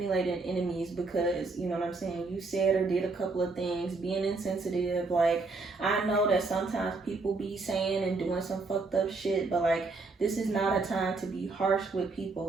enemies because, you know what I'm saying, you said or did a couple of things, being insensitive. Like, I know that sometimes people be saying and doing some fucked up shit, but like, this is not a time to be harsh with people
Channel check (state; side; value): quieter; left; 3.8 dB